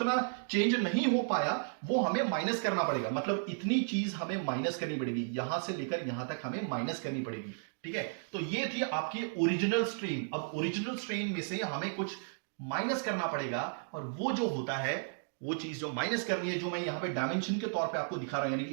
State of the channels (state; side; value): silent; left; digital silence